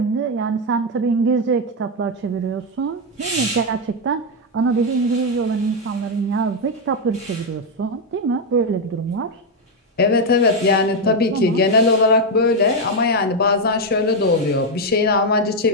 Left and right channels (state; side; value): normal; both; correlation 0.04